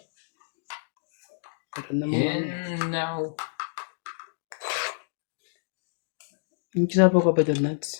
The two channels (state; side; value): silent; right; digital silence